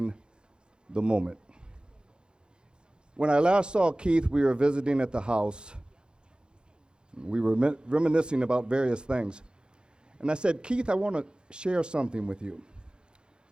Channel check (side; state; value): left; late; 0.049 ms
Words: the moment. When I last saw Keith, we were visiting at the house. We were reminiscing about various things. And I said, Keith, I want to share something with you.